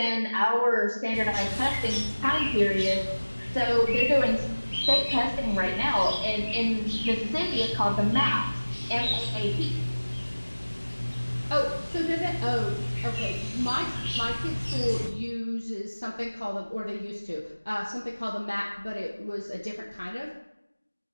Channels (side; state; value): both; inverted; correlation -1.00